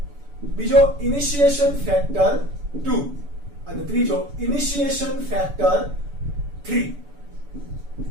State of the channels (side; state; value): left; late; 7.0 ms